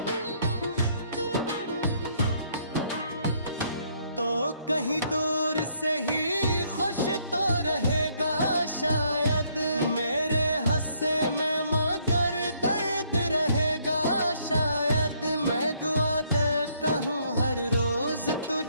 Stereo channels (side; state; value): both; inverted; correlation -0.68